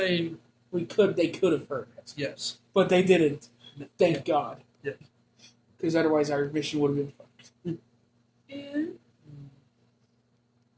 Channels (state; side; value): identical; both; correlation 1.00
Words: They could have heard it. Yes. But they didn't. Thank God. Yeah. Because otherwise our mission would have been fucked. Yeah.